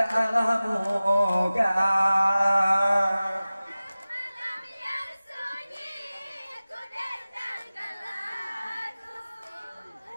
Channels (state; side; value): inverted; both; correlation -0.97